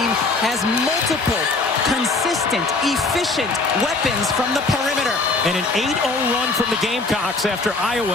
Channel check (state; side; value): quieter; right; 3.5 dB